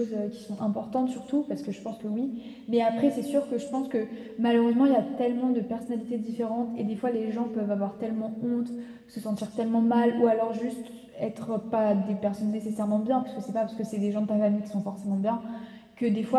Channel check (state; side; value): identical; both; correlation 1.00